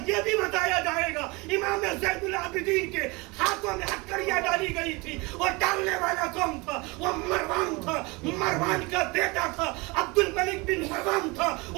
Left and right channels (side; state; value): left; quieter; 25.9 dB